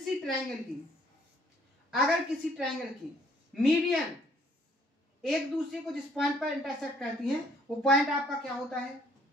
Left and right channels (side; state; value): both; normal; correlation 0.63